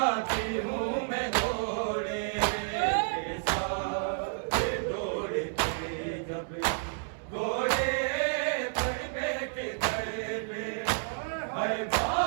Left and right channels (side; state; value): left; silent; 57 dB below the other